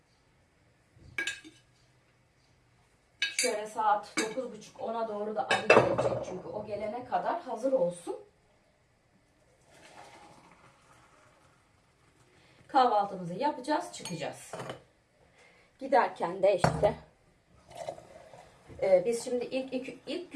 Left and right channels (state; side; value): identical; both; correlation 1.00